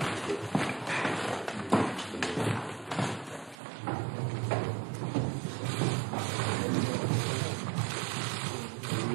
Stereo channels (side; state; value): left; drops out; at 3.6 s